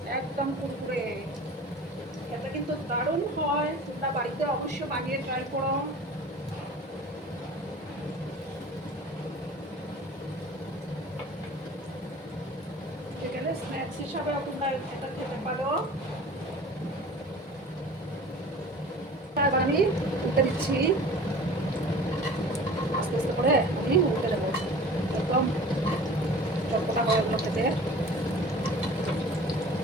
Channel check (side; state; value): both; normal; correlation 0.42